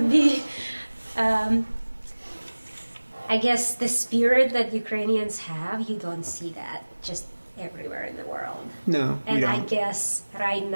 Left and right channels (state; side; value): inverted; both; correlation -1.00